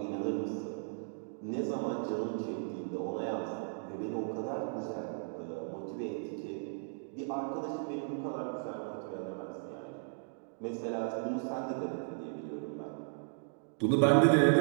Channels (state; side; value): silent; left; digital silence